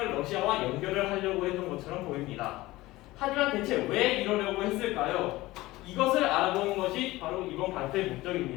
러시아와 연결을 하려고 했던 것처럼 보입니다. 하지만 대체 왜 이러려고 했을까요? 이것을 알아보는 것이 바로 이번 발표의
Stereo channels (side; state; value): right; quieter; 18.7 dB